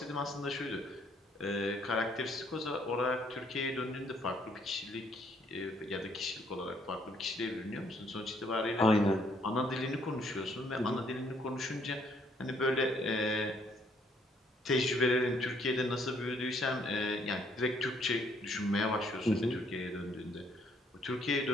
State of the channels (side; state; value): both; normal; correlation 0.67